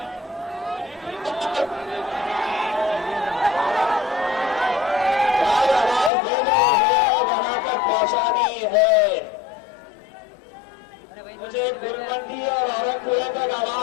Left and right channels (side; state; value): right; drops out; at 6.1 s